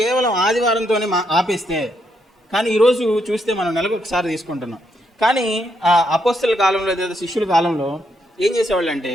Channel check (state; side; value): normal; both; correlation 0.77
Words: ఆదివారంతోనే ఆపేస్తే, కానీ ఈరోజు చూస్తే మనం నెలకు ఒకసారి తీసుకుంటున్నాం. కానీ అపోస్తలుల కాలంలో లేదా శిష్యుల కాలంలో ఏం చేసేవాళ్ళు అంటే,